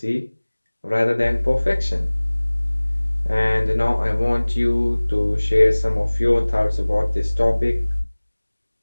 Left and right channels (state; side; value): inverted; both; correlation -1.00